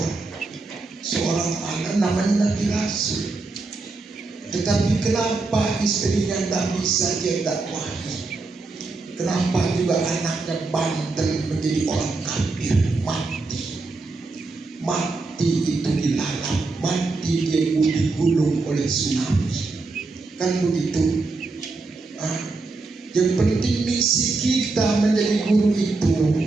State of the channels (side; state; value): left; quieter; 3.6 dB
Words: seorang anak namanya Nabi Rasul. Tetapi kenapa istrinya tidak bisa dia dakwahi? Kenapa juga anaknya bandel menjadi orang kafir, mati itu dilalap, mati dia digulung oleh tsunami, kan begitu. Yang penting misi kita menjadi guru itu,